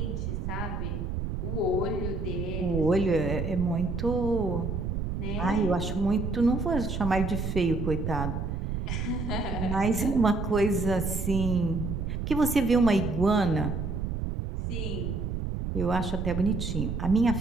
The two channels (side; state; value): right; noise; rumble, 3 dB below the sound